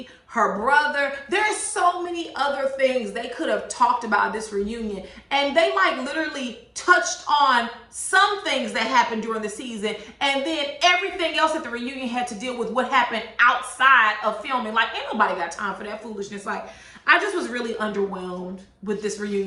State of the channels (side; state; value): both; identical; correlation 1.00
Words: her brother. There's so many other things they could have talked about this reunion, and they like literally touched on some things that happened during the season, and then everything else at the reunion had to deal with what happened outside of filming. Like, ain't nobody got time for that foolishness. Like, I just was really underwhelmed with this